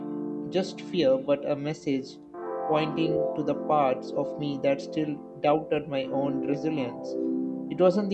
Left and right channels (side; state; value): both; identical; correlation 1.00